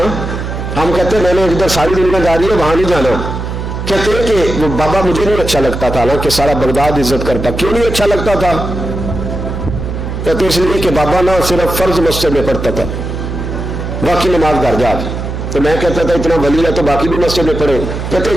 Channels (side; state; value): right; noise; hum, 5 dB below the sound